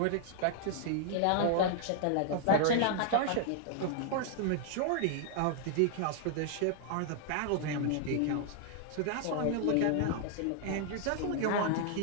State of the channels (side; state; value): both; different; correlation 0.00